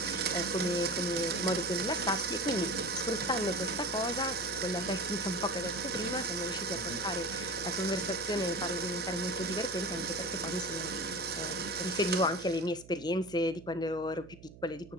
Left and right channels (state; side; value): noise; right; hum, 19 dB below the sound